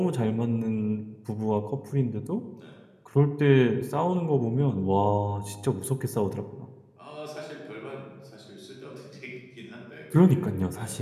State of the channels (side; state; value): both; identical; correlation 1.00